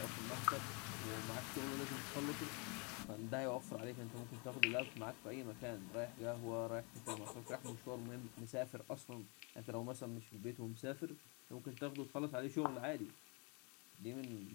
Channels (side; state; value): right; quieter; 32.4 dB